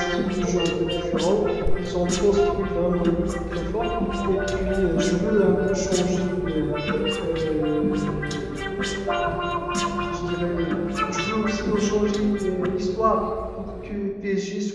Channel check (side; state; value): both; identical; correlation 1.00